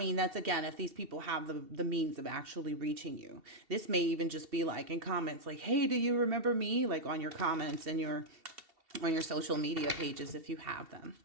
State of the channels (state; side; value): late; left; 2.7 ms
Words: again, if these people have the means of actually reaching you. This may even just be like in comments like, hey, do you remember me? Like on your comments and on your social media pages if you have them.